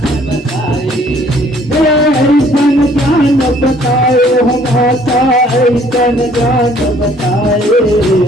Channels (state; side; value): normal; both; correlation 0.59